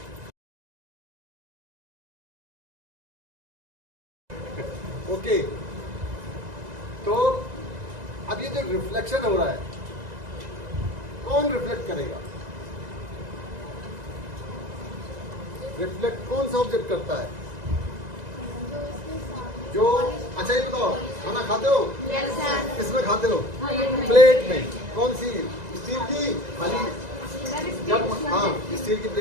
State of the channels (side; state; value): left; late; 1.9 ms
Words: ओके, तो अब ये जो रिफ्लेक्शन हो रहा है, कौन रिफ्लेक्ट करेगा? रिफ्लेक्ट कौन सा ऑब्जेक्ट करता है? जो अच्छा ये बताओ, खाना खाते हो? किसमें खाते हो? प्लेट में। कौन सी? स्टील की थाली? जब हाँ, स्टील की